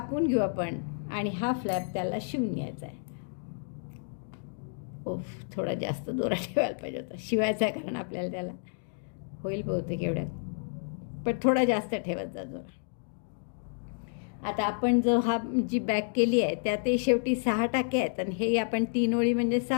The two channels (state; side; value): silent; right; digital silence